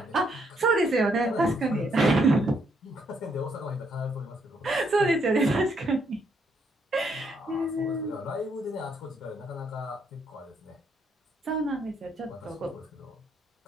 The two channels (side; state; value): both; normal; correlation 0.73